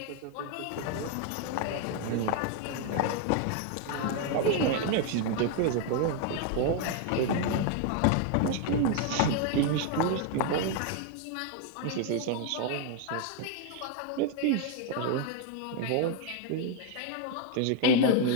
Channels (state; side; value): different; both; correlation 0.01